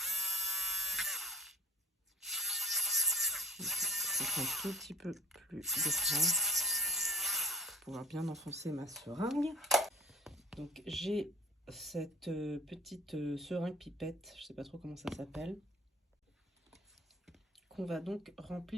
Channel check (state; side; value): normal; both; correlation 0.46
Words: Un tout petit peu plus de grand pour pouvoir bien enfoncer ma seringue. Donc j'ai cette petite seringue pipette, je sais pas trop comment ça s'appelle, qu'on va donc